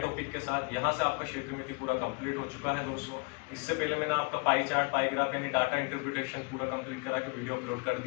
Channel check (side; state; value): right; quieter; 31.4 dB